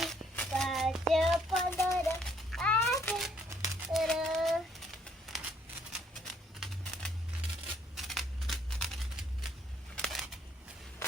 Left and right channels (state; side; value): normal; both; correlation 0.66